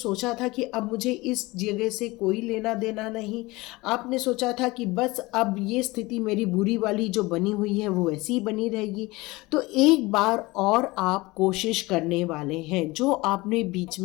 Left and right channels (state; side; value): quieter; right; 21.7 dB